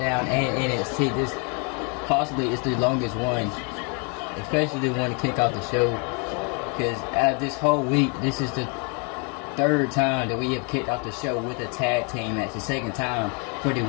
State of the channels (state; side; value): quieter; right; 35.5 dB